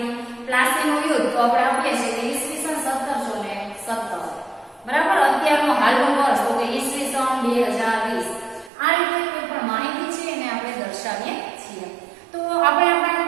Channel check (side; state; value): left; drops out; at 8.7 s